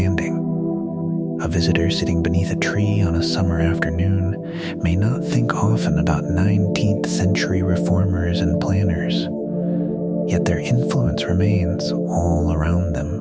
A visitor sitting beneath a tree on a summer afternoon may not think often about 19th century reformers and planners, yet their influence remains all around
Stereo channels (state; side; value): identical; both; correlation 1.00